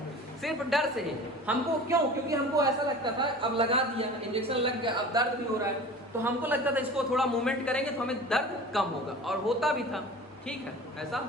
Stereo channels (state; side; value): normal; both; correlation 0.39